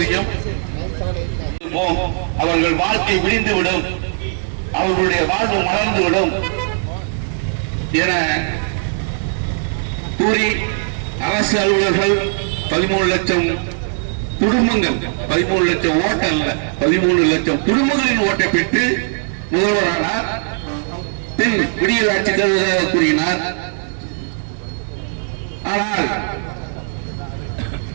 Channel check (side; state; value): left; silent; 67 dB below the other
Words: அவர்கள் வாழ்க்கை விடிந்துவிடும், அவர்களுடைய வாழ்வு மலர்ந்துவிடும் என கூறி அரசு அலுவலர்கள் 13 லட்சம் குடும்பங்கள், 13 லட்சம் ஓட்டு அல்ல, 13 லட்சம் குடும்பங்களின் ஓட்டை பெற்று முதல்வரானார். பின் விடியல் ஆட்சி தருவதாக கூறினார். ஆனால்